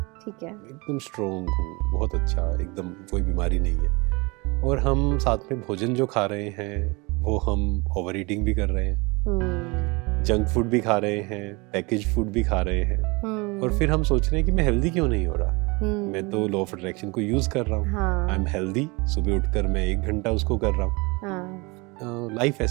ठीक है, एकदम स्ट्रोंग हूँ, बहुत अच्छा, एकदम कोई बीमारी नहीं है, और हम साथ में भोजन जो खा रहे हैं वो हम ओवर ईटिंग भी कर रहे हैं, जंक फूड भी खा रहे हैं, पैकेज फूड भी खा रहे हैं, और फिर हम सोच रहे हैं कि मैं हेल्दी क्यों नहीं हो रहा। मैं तो लॉ ऑफ अट्रैक्शन को यूज कर रहा हूँ, आई एम हेल्दी, सुबह उठकर मैं 1 घंटा उसको कर रहा हूँ। लाइफ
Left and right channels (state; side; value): quieter; left; 26.9 dB